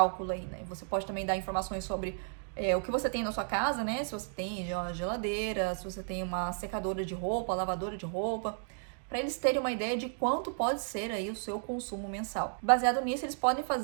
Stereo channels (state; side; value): silent; left; digital silence